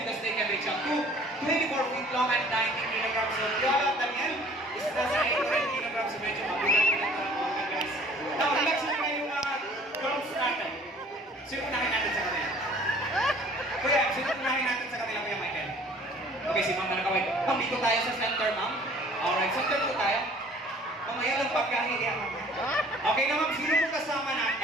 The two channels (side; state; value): both; normal; correlation 0.52